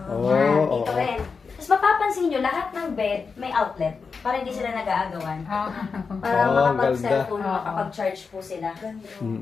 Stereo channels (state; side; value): quieter; right; 5.1 dB